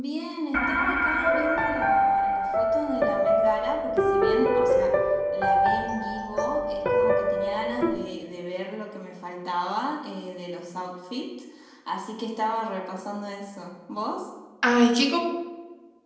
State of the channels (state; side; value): identical; both; correlation 1.00